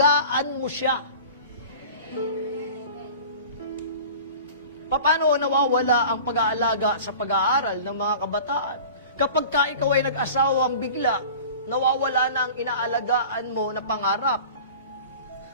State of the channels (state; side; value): inverted; both; correlation -0.40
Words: mo siya. Paano nawawala ang pag-aalaga sa pag-aaral ng mga kabataan? Kapag ka ikaw ay nag-asawang bigla, nawawala na ang inaalagaan mo na pangarap.